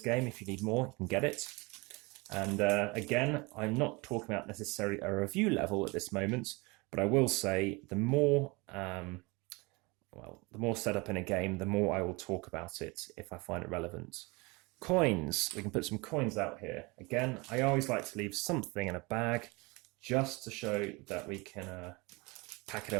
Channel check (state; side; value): quieter; left; 26.1 dB